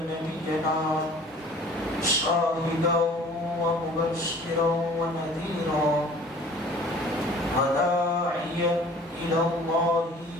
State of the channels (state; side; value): normal; both; correlation 0.48